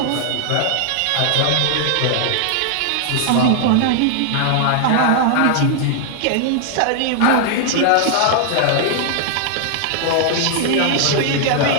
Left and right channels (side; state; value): both; different; correlation 0.00